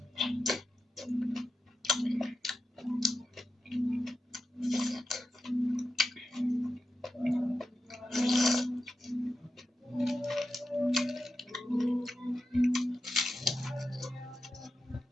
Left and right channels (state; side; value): normal; both; correlation 0.89